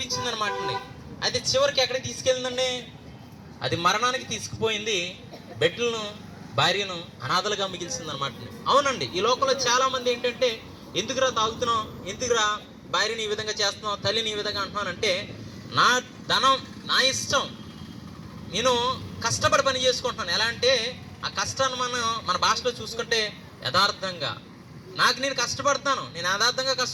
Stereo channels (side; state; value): both; identical; correlation 1.00